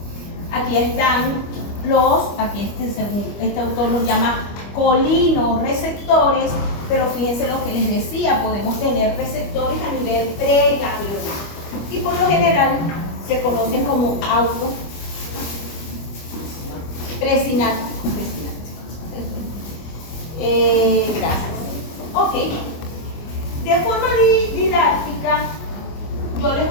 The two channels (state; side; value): late; right; 25 ms